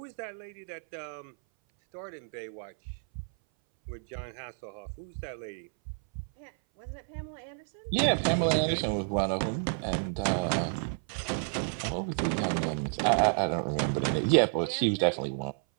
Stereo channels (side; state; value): left; silent; 57 dB below the other